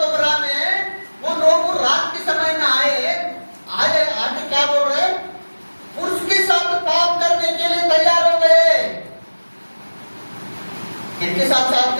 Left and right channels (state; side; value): inverted; both; correlation -1.00